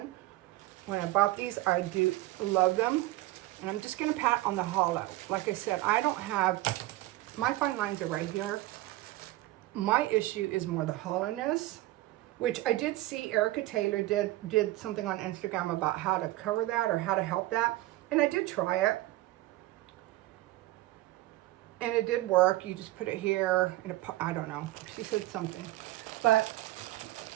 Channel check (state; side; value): quieter; left; 17.3 dB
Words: When I bought these, I do love them. And I'm just going to pat on the hollow. Like I said, I don't have, my fine lines are right here. My issue is more the hollowness, which I did see Erica Taylor did something on Instagram about how to cover that or how to help that. And I did try it. And it did work. You just put it here, and I don't know. She said something. But